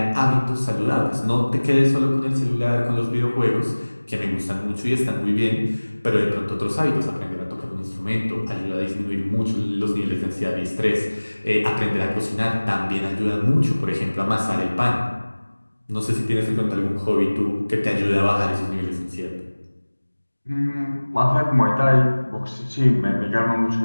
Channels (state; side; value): inverted; both; correlation -1.00